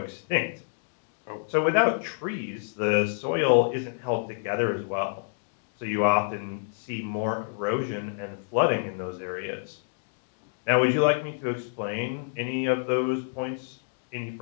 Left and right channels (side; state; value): right; silent; digital silence